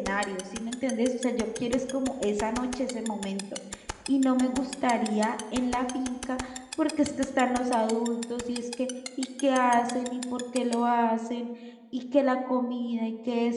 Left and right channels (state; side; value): identical; both; correlation 1.00